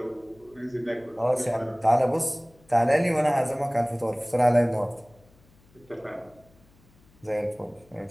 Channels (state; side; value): noise; left; hum, 30 dB below the sound